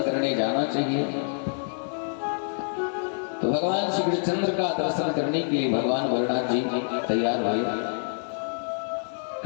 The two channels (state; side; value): silent; right; 60 dB below the other